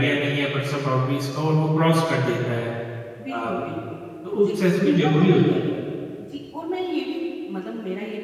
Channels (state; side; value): identical; both; correlation 1.00